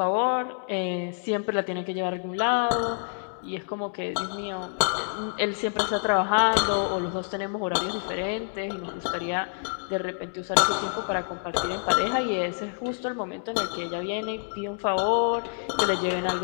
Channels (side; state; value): right; silent; digital silence